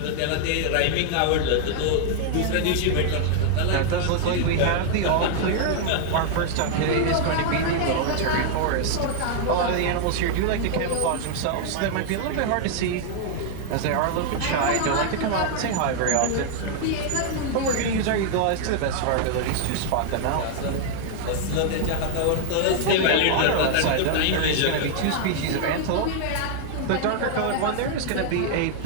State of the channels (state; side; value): different; both; correlation -0.01